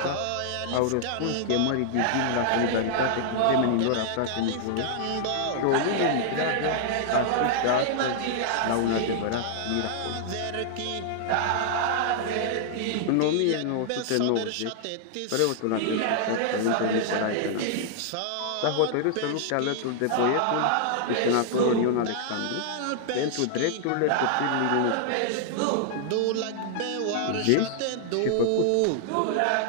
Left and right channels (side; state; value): both; different; correlation -0.01